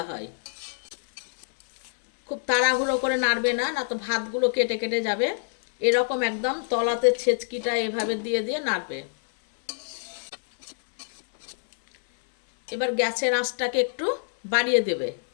হয়। খুব তাড়াহুড়ো করে নাড়বে না, না তো ভাতগুলো কেটে কেটে যাবে। এরকম একদম তলাতে ছেচকিটা এভাবে দিয়ে দিয়ে নাড়বে। এবার গ্যাসের আঁচটাকে একটু বাড়িয়ে দেবে।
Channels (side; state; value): right; silent; 61 dB below the other